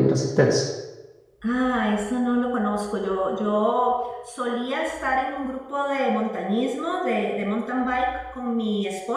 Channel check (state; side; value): identical; both; correlation 1.00